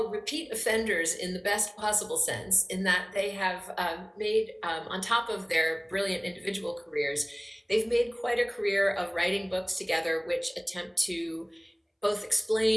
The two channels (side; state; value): both; identical; correlation 1.00